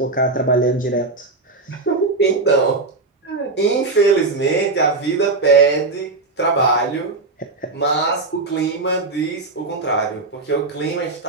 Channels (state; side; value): quieter; left; 3.5 dB